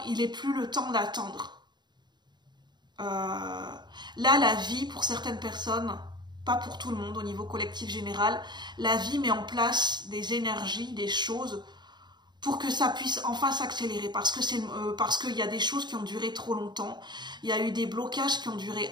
il n'est plus le temps d'attendre. Là, la vie, pour certaines personnes, pas pour tout le monde au niveau collectif général, la vie met en place des énergies, des choses pour que ça puisse enfin s'accélérer, parce qu'il y a des choses qui ont duré trop longtemps, il y a eu des blocages qui ont duré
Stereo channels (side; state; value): left; late; 0.21 ms